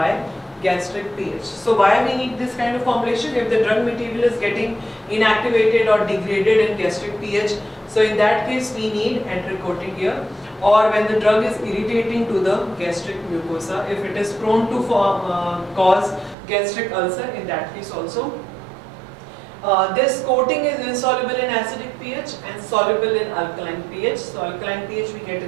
gastric pH. So why we need this kind of formulation? If the drug material is getting inactivated or degraded in gastric pH, so in that case we need enteric coating here. Or when the drug is irritating to the gastric mucosa, if it is prone to cause gastric ulcer, in that case also. This coating is insoluble in acidic pH and soluble in alkaline pH. So alkaline pH we get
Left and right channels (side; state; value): left; drops out; at 16.4 s